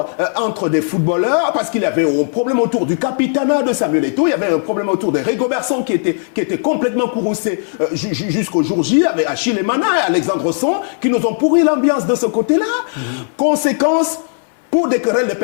entre des footballeurs, parce qu'il y avait un problème autour du capitanat de Samuel Eto'o, il y avait un problème autour de Rigobertson qui était complètement courroucé jusqu'au jour J, avec Achille Emana et Alexandre Son, qui nous ont pourri l'ambiance de ce côté-là. Conséquence, pour des querelles de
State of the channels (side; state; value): right; silent; digital silence